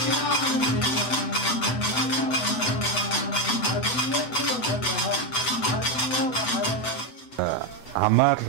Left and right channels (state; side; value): late; right; 7.9 ms